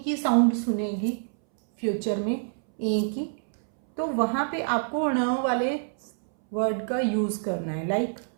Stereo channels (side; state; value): left; silent; 60 dB below the other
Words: की साउंड सुनेगी फ्यूचर में, ए की, तो वहाँ पे आपको ण वाले वर्ड का यूज़ करना है। लाइक